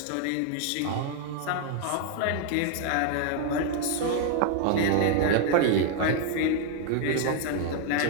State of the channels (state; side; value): different; both; correlation 0.00